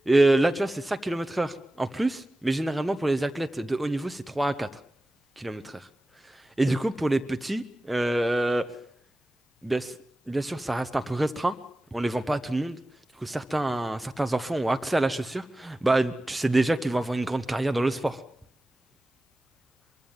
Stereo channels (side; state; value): both; normal; correlation 0.96